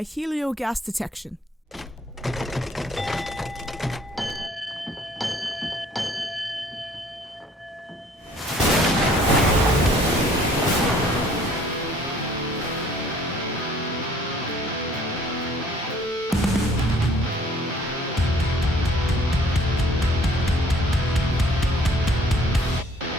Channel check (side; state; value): both; normal; correlation 0.57